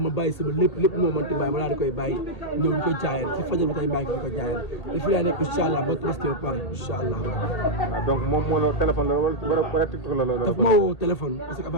bàyyi sama lépp moo mënti bàyyi ma daal di koy bàyyi ñëw di ko jaayal si fajar ba tey maa ngi fi ko jaayal te fii laa nekk incha allah ba tabaski ba pare incha allah. donc moom moo la téléphone la wala TikTok la daf ma woo téléphone parce que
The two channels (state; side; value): late; right; 1.8 ms